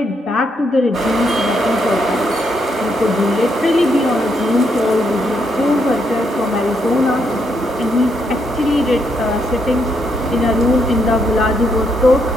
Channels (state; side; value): normal; both; correlation 0.77